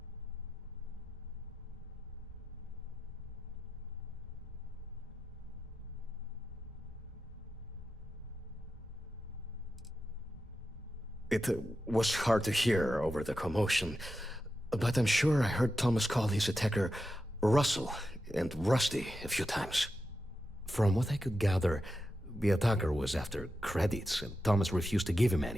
It was hard to hear over the commotion, but I'm sure I heard Thomas call his attacker Russell and Rusty a few times. From what I could gather, the attacker was after credits, and Thomas refused to give him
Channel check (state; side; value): normal; both; correlation 0.89